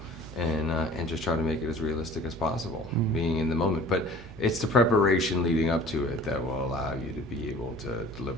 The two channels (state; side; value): normal; both; correlation 0.47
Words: and just try to make it as realistic as possible, being in the moment. But it's the preparation leading up to it that will allow you to be able to